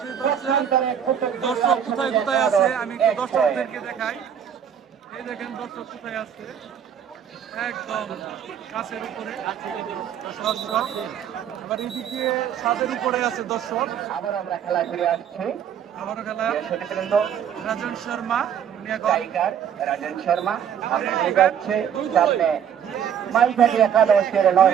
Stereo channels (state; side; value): quieter; left; 8.7 dB